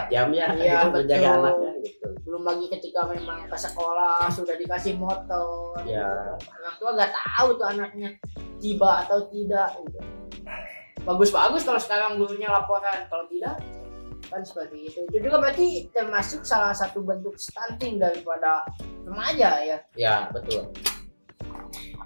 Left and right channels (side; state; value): both; inverted; correlation -1.00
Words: jam ya, Iya, gitu, menjaga betul. anaknya gitu. Belum lagi ketika memang ke sekolah sudah dikasih motor, Ya. gitu. Orang tua nggak tahu tuh anaknya tiba atau tidak gitu. Bagus-bagus kalau sekarang gurunya laporan, kalau tidak kan seperti itu. Itu juga berarti termasuk salah satu bentuk stunting daripada remaja ya. Ya betul.